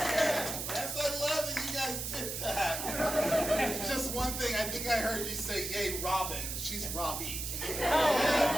I love that you guys did that. Just one thing, I think I heard you say, yay, Robin. She's Robbie.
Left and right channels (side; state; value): right; noise; hiss, 4 dB below the sound